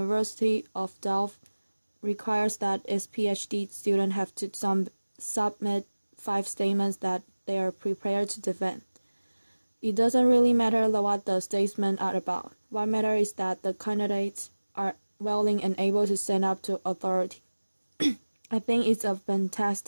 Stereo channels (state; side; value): inverted; both; correlation -1.00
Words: of Delft requires that its PhD students have to submit 5 statements that they are prepared to defend. It doesn't really matter what the statements are about. What matters is that the candidates are willing and able to stand up to authority. I think it's a